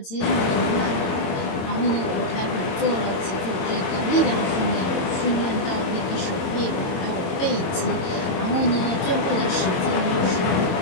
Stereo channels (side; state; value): right; late; 22 ms